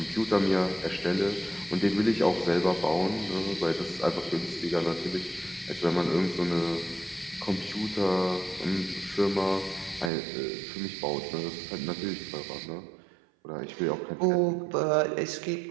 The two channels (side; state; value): left; drops out; at 10.1 s